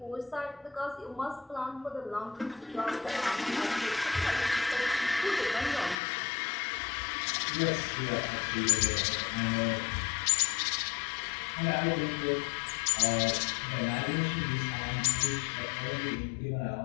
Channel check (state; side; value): drops out; right; at 6.0 s